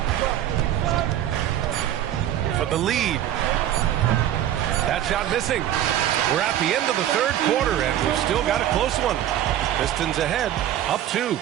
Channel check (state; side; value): quieter; left; 11.8 dB